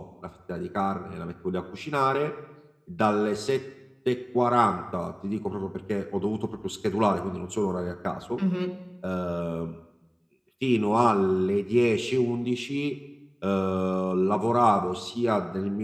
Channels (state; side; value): identical; both; correlation 1.00